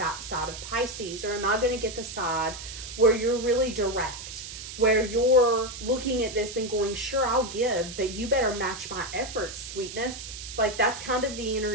side of Pisces? Or am I going to get the side where you're really direct, where you're looking at this and going, sure, I'll give, but you better match my efforts, sweetness. Like, that's kind of the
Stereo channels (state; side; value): noise; right; hiss, 10 dB below the sound